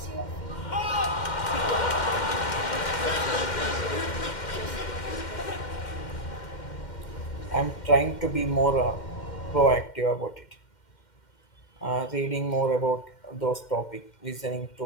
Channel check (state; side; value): late; right; 2.1 ms